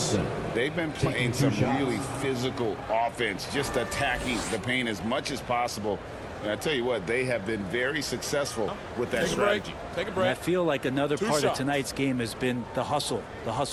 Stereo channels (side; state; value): both; identical; correlation 1.00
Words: They've been playing some really physical offense, just attacking the paint as much as possible. And I tell you what, they have been very successful with that strategy. Take a And break. I feel like another part shots. of tonight's game has been the hustle